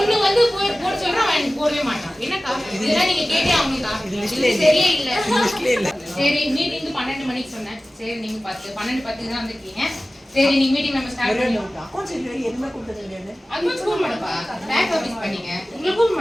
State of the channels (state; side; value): normal; both; correlation 0.97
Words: வந்து போட சொல்றேன் அவன் எனக்கு போடவே மாட்டான் என்னக்கா இதெல்லாம் நீங்க கேட்டே ஆகணும்க்கா இது சரியே இல்ல சரி மீட்டிங் 12 மணிக்கு சொன்னேன் சரி நீங்க 12:10 தான் வந்திருக்கீங்க சரி நீங்க மீட்டிங் நம்ம ஸ்டார்ட் பண்ணலாம் அக்கவுண்ட்ஸ் இல்ல எதுமே கொடுத்தது இல்லையா அட்வான்ஸ் கூப்பிட மாட்டப்பா பேக் ஆபீஸ் பண்ணீங்க உங்களை கூப்பிட